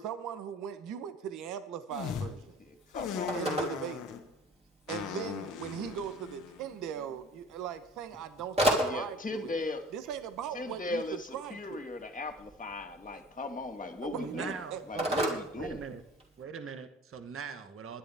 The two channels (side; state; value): both; normal; correlation 0.45